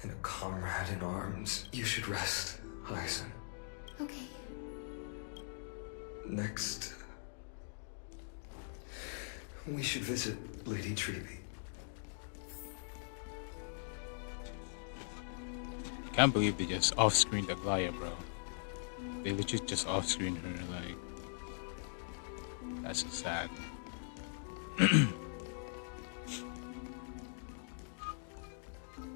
and a comrade in arms. You should rest, Hyacinth. Okay. Next, we should visit Lady Treby. I can't believe they just off-screened Aglaia, bro. They legit just off-screened her, like... That's so sad.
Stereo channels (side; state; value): right; silent; digital silence